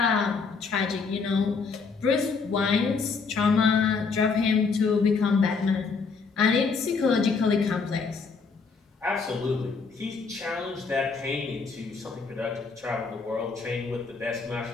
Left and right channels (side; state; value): right; quieter; 4.9 dB